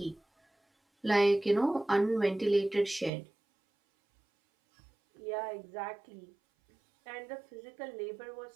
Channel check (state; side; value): drops out; left; at 3.1 s